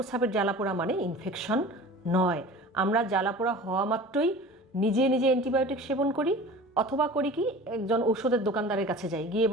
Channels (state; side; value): normal; both; correlation 0.39